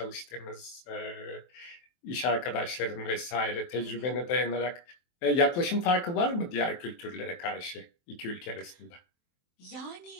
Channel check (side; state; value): right; late; 23 ms